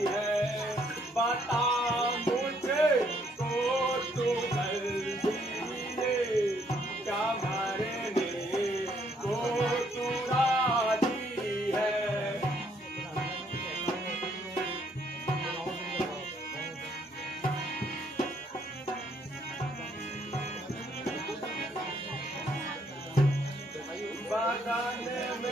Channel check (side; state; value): both; normal; correlation 0.69